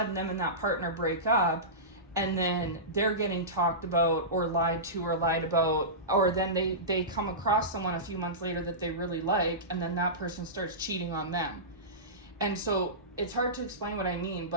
them and that partner break up, and then they're getting talked about or lied to or lied about, or then they come across someone a few months later that they really like, and then that person starts cheating on them. And so it's hard to explain what I mean,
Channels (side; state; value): both; normal; correlation -0.20